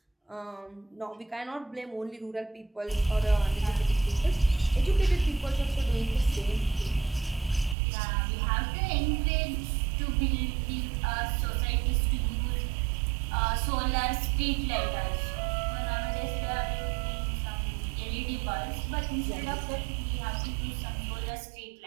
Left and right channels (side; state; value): left; drops out; at 7.8 s